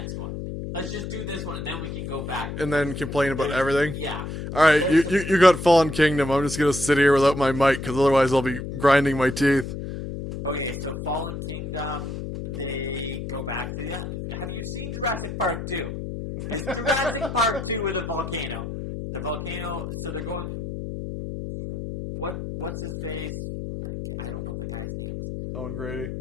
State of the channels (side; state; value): left; noise; hum, 6 dB below the sound